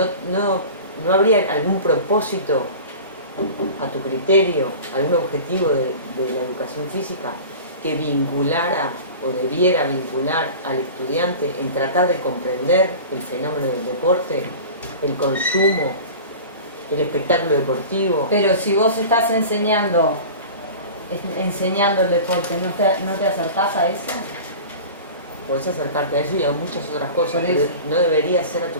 ¿no habría algún propósito a tu criterio, algún objetivo de la educación física que vinculara o debiera vincular al estudiante en tratar de comprender el fenómeno del deporte, el consumo, el espectáculo deportivo? Pero si vos estás enseñando el deporte, ¿no te acercás a eso? Podés acercarte a eso y a muchas otras cosas, pero ¿no debería ser a tu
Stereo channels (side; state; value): both; inverted; correlation -0.36